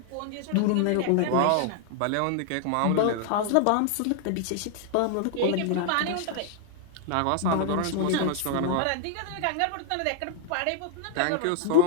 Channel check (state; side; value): different; both; correlation 0.00